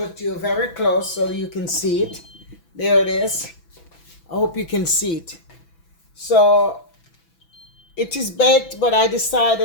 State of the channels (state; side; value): late; right; 6.0 ms